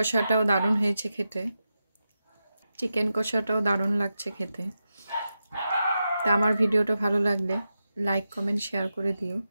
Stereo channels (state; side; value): inverted; both; correlation -0.90